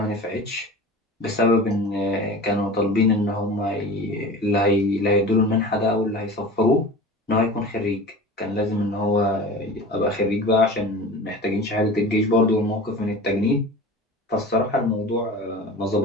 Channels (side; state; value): both; normal; correlation 0.35